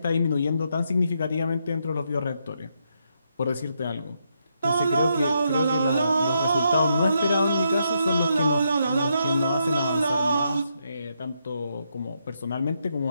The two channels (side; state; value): both; inverted; correlation -0.79